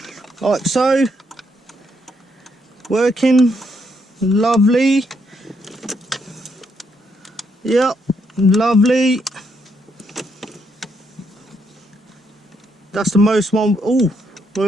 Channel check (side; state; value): both; normal; correlation 0.76